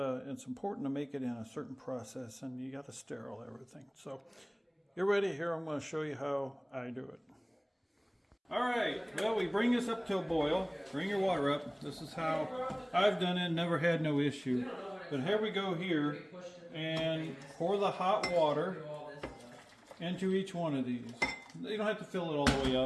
to make it in a certain process, and you got to sterile everything. So get ready. Here I'm going to show you how I do it. All right, well, we bring this up to a boil. Bring your water up. This is how I've done it, never had no issue. But here we go here, and pour the hot water into each one of these. You don't have to fill it all the way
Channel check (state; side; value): identical; both; correlation 1.00